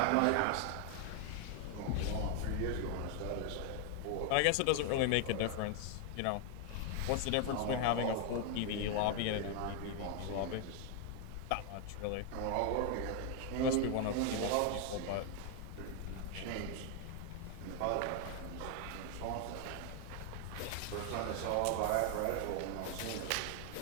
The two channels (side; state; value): both; different; correlation 0.00